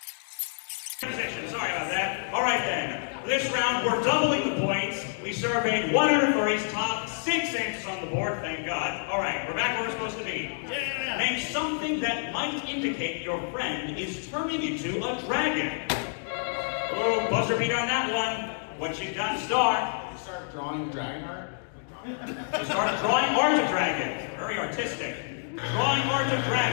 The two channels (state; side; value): silent; right; digital silence